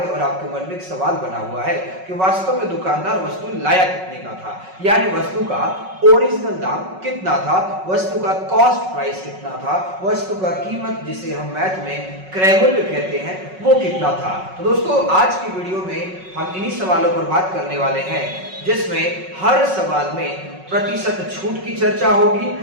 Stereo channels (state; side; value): late; left; 5.4 ms